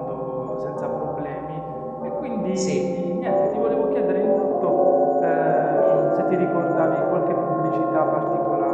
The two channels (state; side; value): identical; both; correlation 1.00